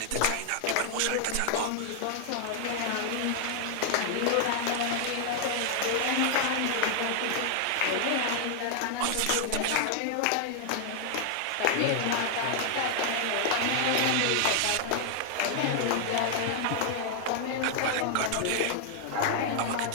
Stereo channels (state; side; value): different; both; correlation 0.00